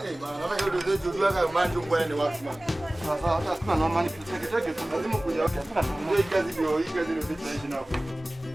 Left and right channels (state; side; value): normal; both; correlation 0.98